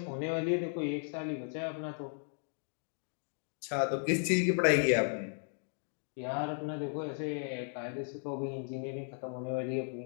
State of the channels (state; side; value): silent; right; 54 dB below the other